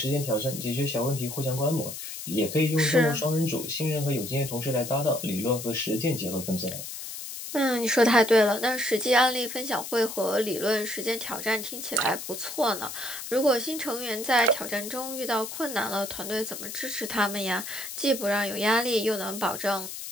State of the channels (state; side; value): noise; left; hiss, 8 dB below the sound